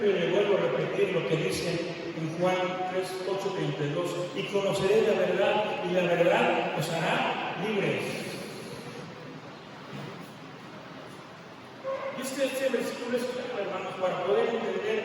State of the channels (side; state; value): both; identical; correlation 1.00